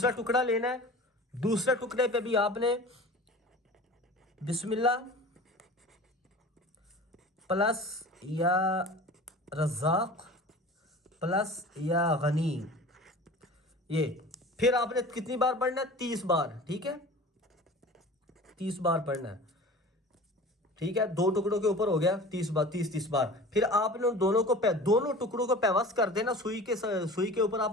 ٹکڑا لینا ہے، دوسرے ٹکڑے پہ بھی آپ نے بسم اللہ پلس یا رزاق پلس یا غنی، یہ پھر آپ نے کتنی بار پڑھنا ہے؟ 30 بار، ٹھیک ہے؟ 30 بار پڑھنا ہے، ٹھیک ہے؟ 2 ٹکڑوں کے اوپر ہو گیا 30 بار۔ پھر آپ نے دونوں ٹکڑوں کو پیوست کر دینا، سوئی کے اوپر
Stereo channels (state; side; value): normal; both; correlation 0.39